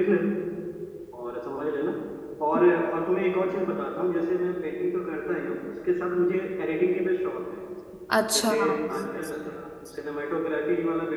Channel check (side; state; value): both; identical; correlation 1.00